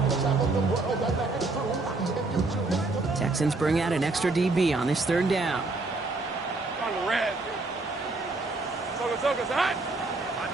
Texans bring out an extra DB on this 3rd down. On the red. Toca's hot.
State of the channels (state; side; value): quieter; left; 3.3 dB